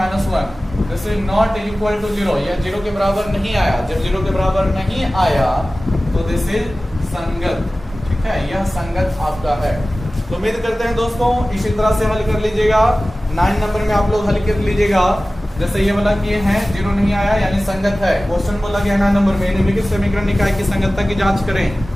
this is not equal to 0। यह 0 के बराबर नहीं आया। जब 0 के बराबर नहीं आया तो दिस इज संगत। ठीक है, यह संगत आपका है। तो उम्मीद करते हैं दोस्तों इसी तरह से हल कर लीजिएगा। 9 नंबर में आप लोग हल कर लीजिएगा। जैसे ये वाला किए हैं, 0 नहीं आया यानी संगत है। क्वेश्चन बोला गया 9 नंबर में निम्नलिखित समीकरण निकाय की संगतता की जांच करें।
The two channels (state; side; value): normal; both; correlation 0.97